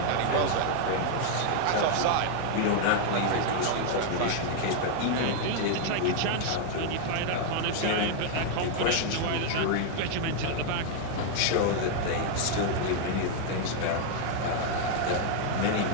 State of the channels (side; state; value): both; different; correlation 0.00